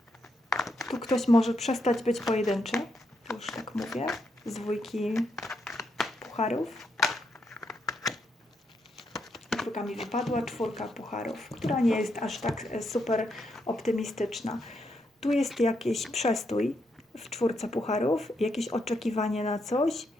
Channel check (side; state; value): both; normal; correlation 0.80